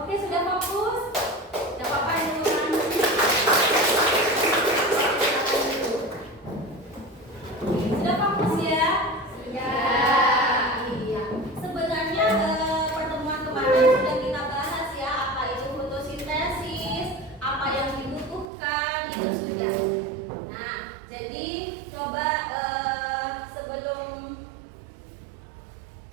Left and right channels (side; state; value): left; drops out; at 18.5 s